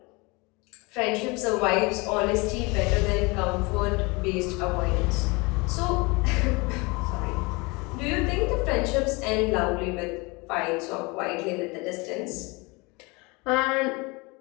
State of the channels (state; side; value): quieter; right; 26.7 dB